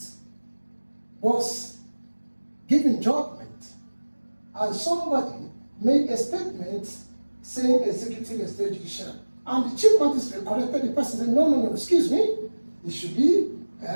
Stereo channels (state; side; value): inverted; both; correlation -1.00